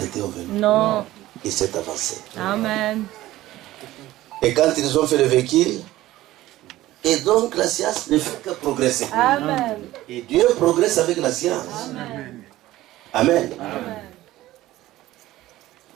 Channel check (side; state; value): left; quieter; 16.0 dB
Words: au vélo. Non. Il s'est avancé. Amen. Et quand ils ont fait le véhicule, et donc la science ne fait que progresser. Amen. Et Dieu progresse avec la science. Amen. Amen. Amen.